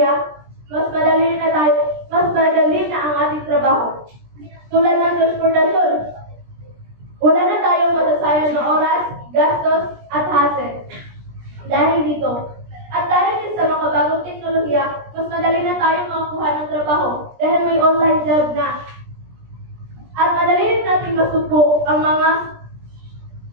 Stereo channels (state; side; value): late; left; 17 ms